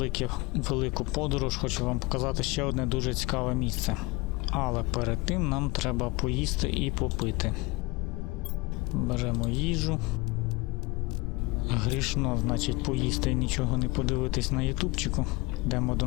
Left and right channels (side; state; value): right; quieter; 23.9 dB